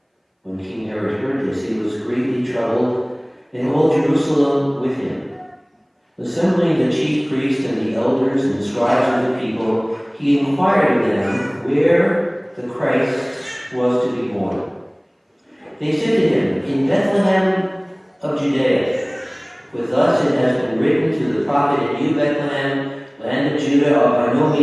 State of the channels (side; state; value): both; identical; correlation 1.00